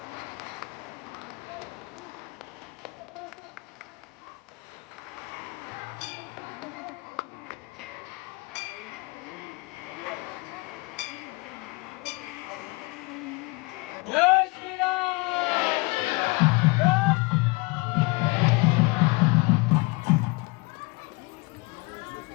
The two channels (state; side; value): quieter; right; 26.6 dB